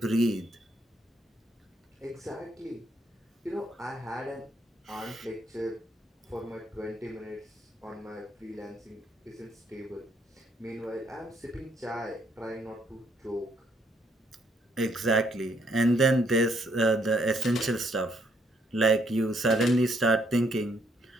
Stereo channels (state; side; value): normal; both; correlation 0.71